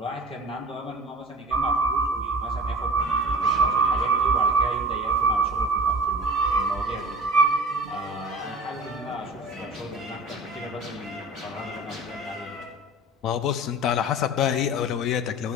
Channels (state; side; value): normal; both; correlation 0.39